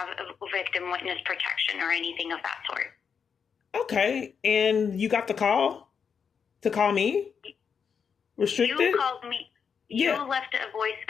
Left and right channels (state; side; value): quieter; right; 6.6 dB